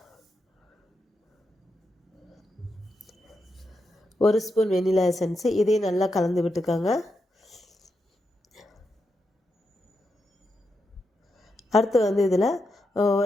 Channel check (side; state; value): both; normal; correlation 0.85